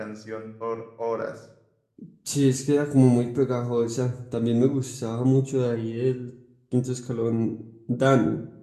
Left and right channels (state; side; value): identical; both; correlation 1.00